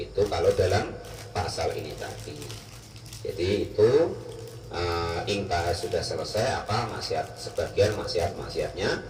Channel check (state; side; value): identical; both; correlation 1.00